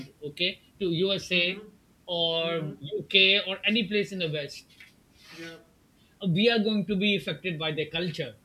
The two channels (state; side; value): identical; both; correlation 1.00